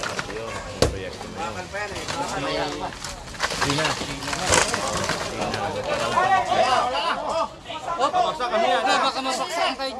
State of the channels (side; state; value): both; identical; correlation 1.00